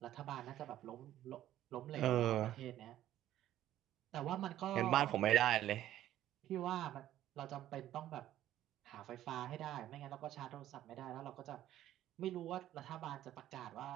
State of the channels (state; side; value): quieter; left; 12.9 dB